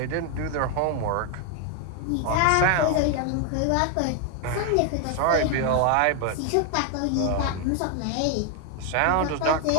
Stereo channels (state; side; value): different; both; correlation 0.01